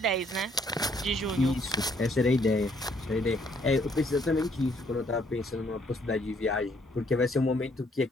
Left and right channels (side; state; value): both; normal; correlation 0.67